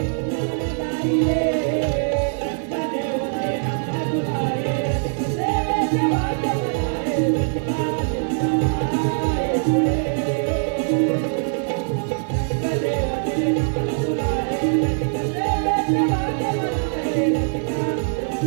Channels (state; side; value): silent; left; 64 dB below the other